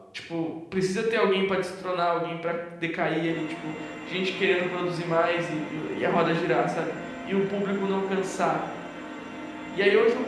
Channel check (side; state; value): both; identical; correlation 1.00